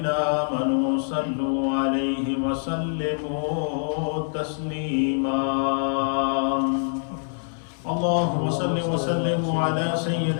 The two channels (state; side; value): silent; right; digital silence